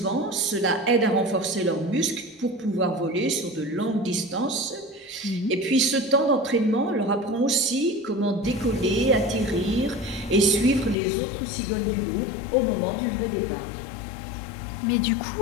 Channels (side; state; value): right; drops out; at 11.0 s